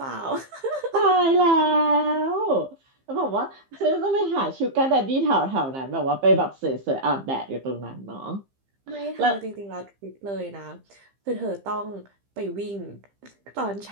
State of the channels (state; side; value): late; left; 15 ms